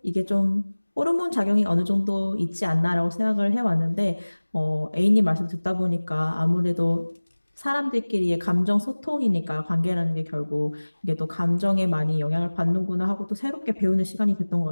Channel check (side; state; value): both; inverted; correlation -1.00